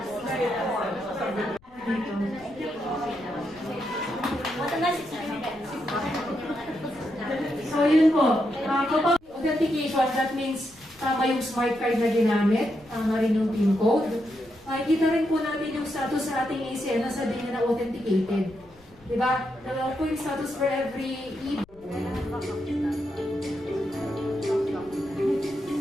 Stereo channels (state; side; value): noise; left; rumble, 26 dB below the sound